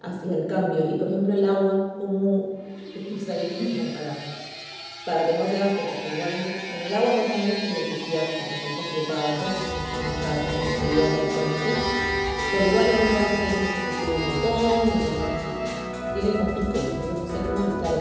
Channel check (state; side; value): identical; both; correlation 1.00